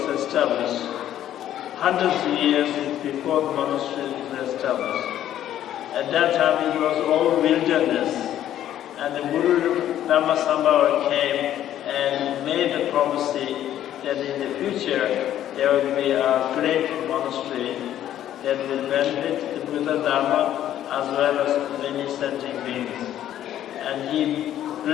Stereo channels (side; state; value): right; quieter; 11.7 dB